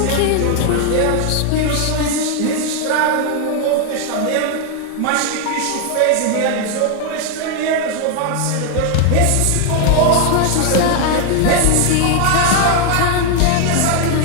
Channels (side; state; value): both; different; correlation 0.00